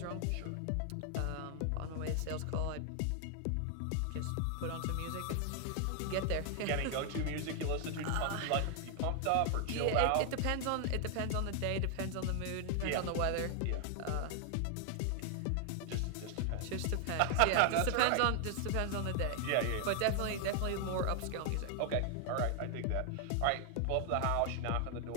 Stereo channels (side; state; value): both; different; correlation 0.00